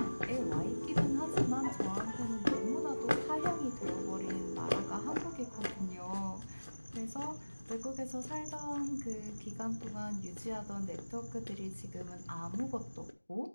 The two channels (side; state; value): both; inverted; correlation -1.00